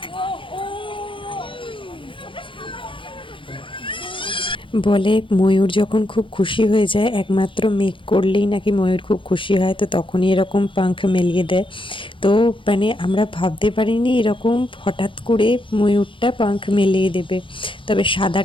বলে ময়ূর যখন খুব খুশি হয়ে যায়, একমাত্র মেঘ করলেই নাকি ময়ূর খুব খুশি হয়, তো তখনই এরকম পাঙ্খ মেলিয়ে দেয়। তো মানে আমরা ভাবতে পারিনি এরকম হঠাৎ করে ময়ূরটা পাঙ্খ মেলিয়ে দেবে। তবে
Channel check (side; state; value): right; late; 0.25 ms